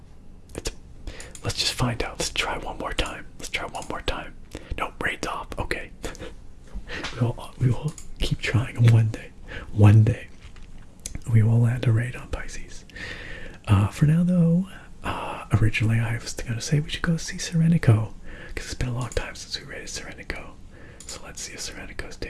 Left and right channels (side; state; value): both; identical; correlation 1.00